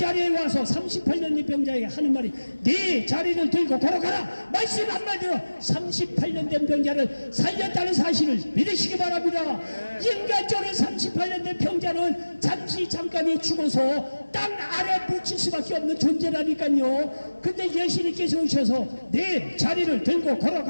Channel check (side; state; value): both; inverted; correlation -1.00